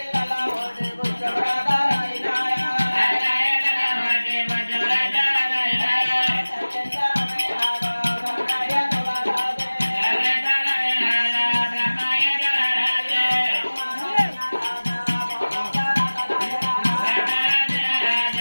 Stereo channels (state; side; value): inverted; both; correlation -1.00